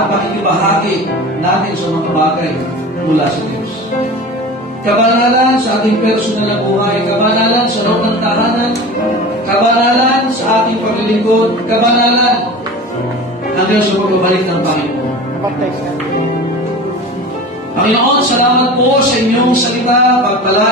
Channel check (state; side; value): normal; both; correlation 0.34